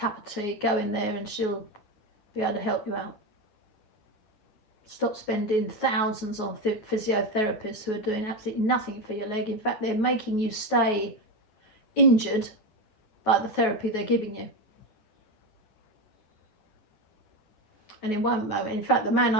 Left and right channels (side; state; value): right; late; 9.4 ms